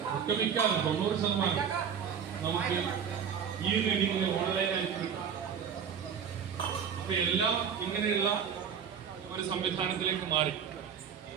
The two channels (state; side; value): quieter; left; 7.5 dB